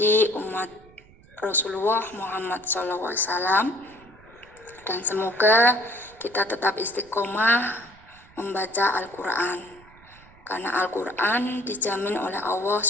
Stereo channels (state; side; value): noise; right; rumble, 25 dB below the sound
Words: umat Rasulullah Muhammad SAW, dan semoga kita tetap istiqomah membaca Al-Quran, karena Al-Quran dijamin oleh Allah